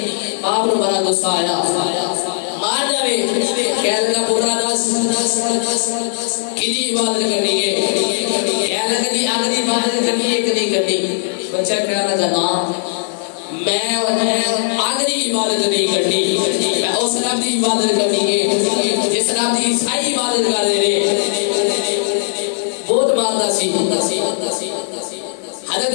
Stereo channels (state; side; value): silent; right; 64 dB below the other